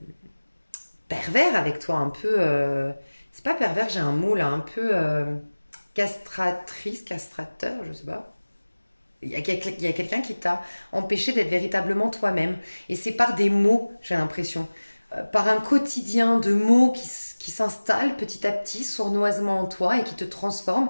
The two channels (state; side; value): inverted; both; correlation -1.00